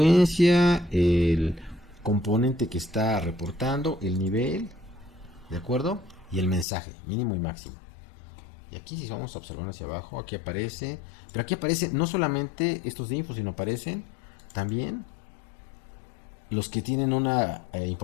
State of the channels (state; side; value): drops out; right; at 6.7 s